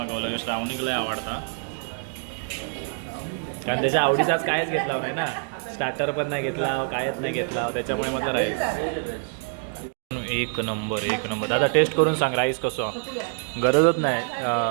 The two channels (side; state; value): left; silent; 58 dB below the other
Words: श्रावणीला लय आवडता कारण त्याच्या आवडीचाच कायच घेतला नाही ना. स्टार्टर पण नाही घेतला कायच नाही घेतला त्याच्यामुळे म्हटलं राईस एक नंबर एक नंबर. दादा टेस्ट करून सांग राईस कसं. गरजच नाही